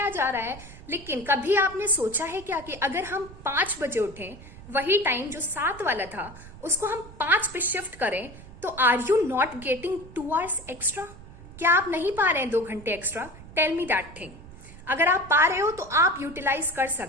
जा रहा है. लेकिन कभी आपने सोचा है क्या कि अगर हम 5 बजे उठें, वही टाइम जो 7 वाला था उसको हम 5 पे शिफ्ट करें, तो are you not getting 2 hours extra? क्या आप नहीं पा रहे हैं 2 घंटे extra? Tell me that thing. अगर आप पा रहे हो तो आप यूटिलाइज कर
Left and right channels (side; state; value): right; noise; rumble, 17 dB below the sound